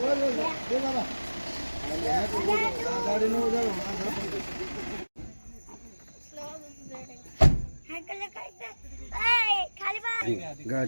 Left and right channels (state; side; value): inverted; both; correlation -1.00